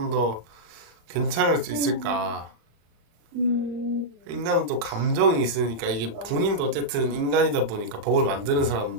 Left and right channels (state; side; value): late; left; 35 ms